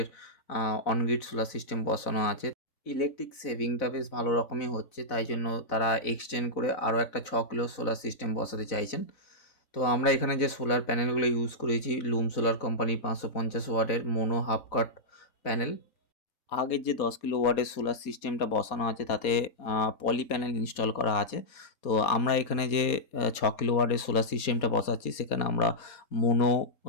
অনগ্রিড সোলার সিস্টেম বসানো আছে। ইলেকট্রিক সেভিংটা বেশ ভালো রকমই হচ্ছে, তাই জন্য তারা এক্সটেন্ড করে আরও একটা 6 কিলো সোলার সিস্টেম বসাতে চাইছেন। তো আমরা এখানে যে সোলার প্যানেলগুলো ইউজ করেছি, লুম সোলার কোম্পানি 550 ওয়াটের মোনো হাফ কাট প্যানেল। আগের যে 10 কিলোওয়াটের সোলার সিস্টেমটা বসানো আছে তাতে পলি প্যানেল ইনস্টল করা আছে। তো আমরা এখানে যে 6 কিলোওয়াটের সোলার সিস্টেমটা বসাচ্ছি সেখানে আমরা মোনো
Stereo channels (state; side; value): late; right; 4.2 ms